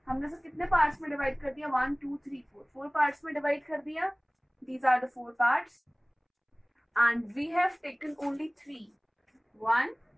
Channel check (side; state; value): both; identical; correlation 1.00